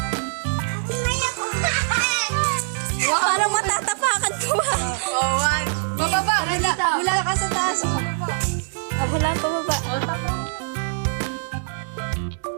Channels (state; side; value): silent; left; digital silence